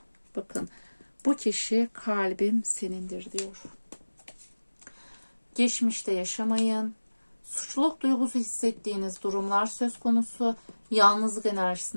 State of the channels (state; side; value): inverted; both; correlation -1.00